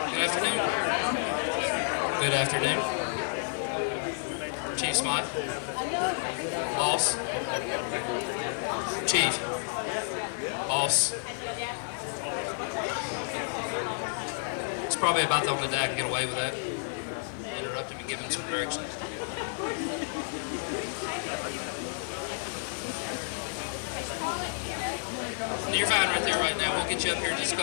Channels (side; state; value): right; silent; digital silence